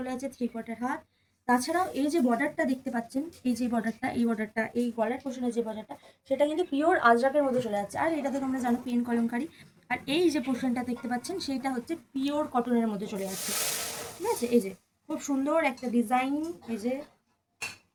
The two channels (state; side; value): identical; both; correlation 1.00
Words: আছে 3/4 হাত। তাছাড়াও এই যে বর্ডারটা দেখতে পাচ্ছেন, এই যে বর্ডারটা, এই বর্ডারটা, এই গলার পোষণের যে বর্ডারটা, সেটা কিন্তু পিওর আজরাকের মধ্যে চলে যাচ্ছে। আর এটা তো তোমরা জানো পেন কলমকারি। আর এই যে পোর্শনটা দেখতে পাচ্ছেন সেটা হচ্ছে পিওর কটনের মধ্যে চলে যাচ্ছে, ঠিক আছে? এই যে খুব সুন্দর একটা ডিজাইন, এই যে